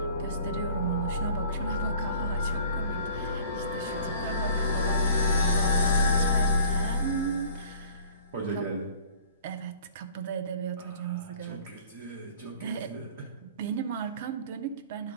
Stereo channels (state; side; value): inverted; both; correlation -0.48